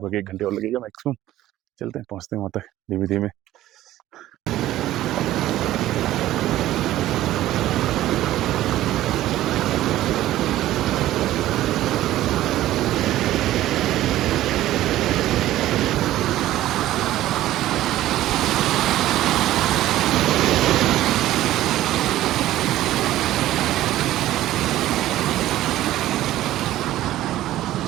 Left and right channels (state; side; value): quieter; left; 14.4 dB